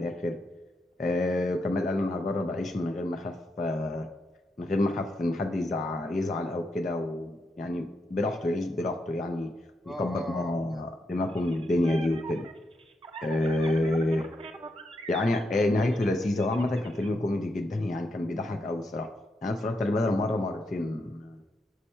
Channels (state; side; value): normal; both; correlation 0.82